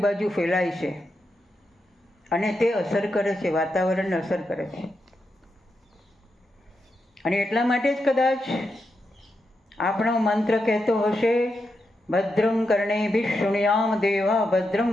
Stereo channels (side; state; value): both; normal; correlation 0.86